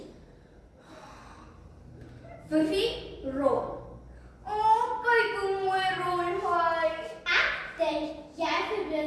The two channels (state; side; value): identical; both; correlation 1.00